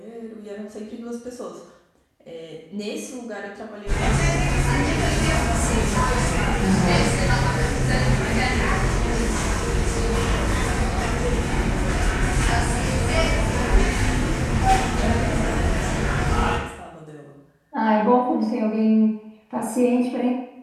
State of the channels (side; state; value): both; identical; correlation 1.00